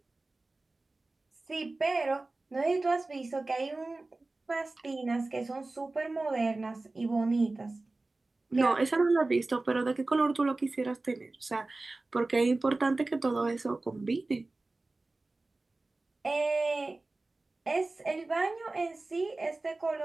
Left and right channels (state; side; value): quieter; left; 3.2 dB